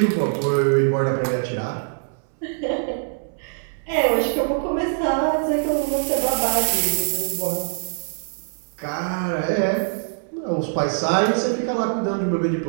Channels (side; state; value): left; silent; 63 dB below the other